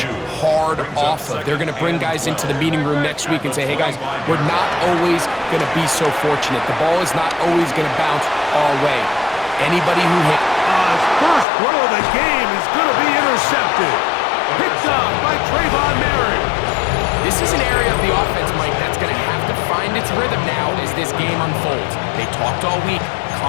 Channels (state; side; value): drops out; right; at 11.5 s